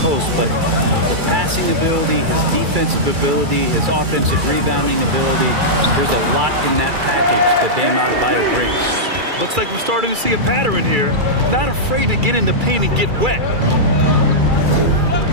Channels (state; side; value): late; left; 2.3 ms